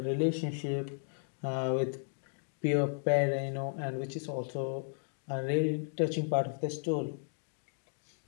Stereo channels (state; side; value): silent; right; digital silence